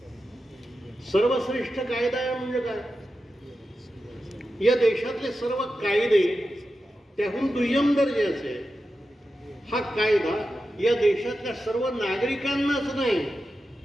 सर्वश्रेष्ठ कायदा आहे म्हणजे काय? या देशातले सर्व कायदे त्याहून दुय्यम दर्जाचे. हा कायदा या देशातल्या सर्व नागरिकांनाच नाही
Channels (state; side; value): normal; both; correlation 0.91